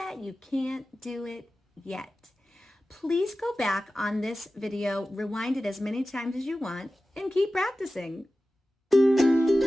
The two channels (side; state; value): both; normal; correlation 0.95